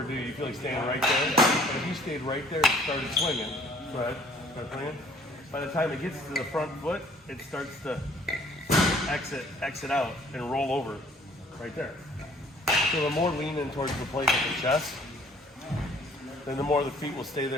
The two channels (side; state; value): both; normal; correlation 0.57